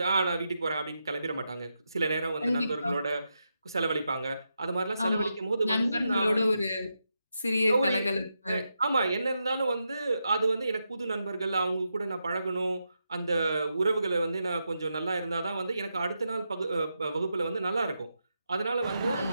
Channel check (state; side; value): inverted; both; correlation -0.85